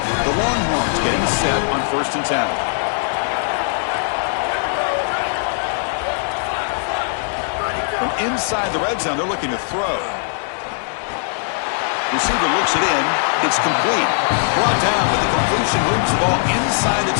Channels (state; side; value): silent; right; 66 dB below the other